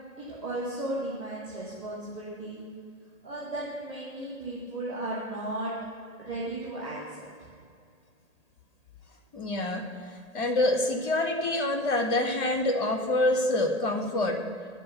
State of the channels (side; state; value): right; late; 1.8 ms